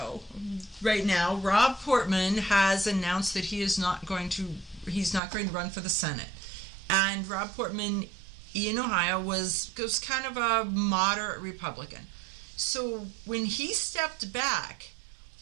right now, Rob Portman has announced that he's not going to run for the Senate. And Rob Portman in Ohio was kind of a moderate Republican. So when he stepped back,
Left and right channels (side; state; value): left; drops out; at 5.2 s